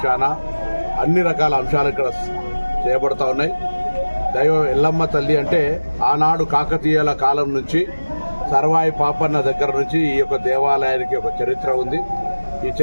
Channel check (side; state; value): both; inverted; correlation -1.00